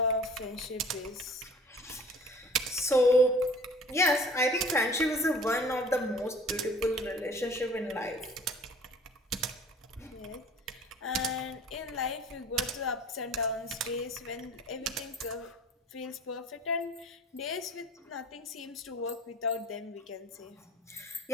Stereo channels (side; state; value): both; normal; correlation 0.47